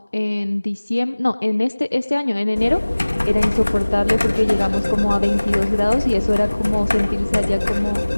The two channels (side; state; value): both; inverted; correlation -1.00